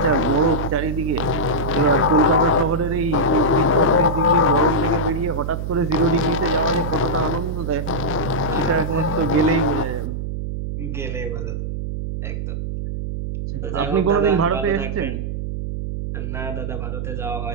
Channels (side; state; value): right; noise; hum, 4 dB below the sound